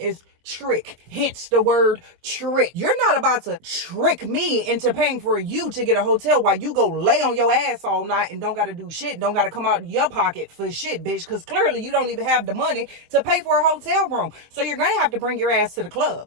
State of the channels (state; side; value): late; left; 23 ms